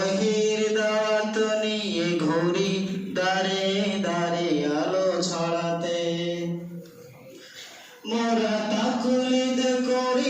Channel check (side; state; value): both; identical; correlation 1.00